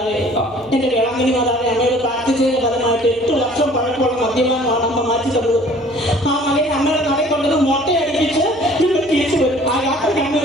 എന്റെ വേളാങ്കണ്ണി മാതാവെ അമ്മയോട് പ്രാർത്ഥിച്ചതിന്റെ ഫലമായിട്ട് 8 വർഷം പഴക്കമുള്ള മദ്യപാനമാണ് അമ്മ മാറ്റി തന്നത്. ആ മകനെ അമ്മയുടെ നടയിൽ കൊണ്ടത് മൊട്ടയടിപ്പിച്ച് ഞങ്ങൾ തിരിച്ചു വരും. ആ യാത്രയ്ക്ക് അമ്മ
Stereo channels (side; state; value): left; noise; hum, 26 dB below the sound